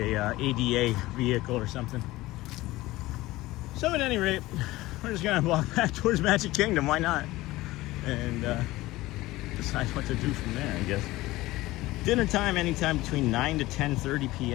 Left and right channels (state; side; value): quieter; right; 18.3 dB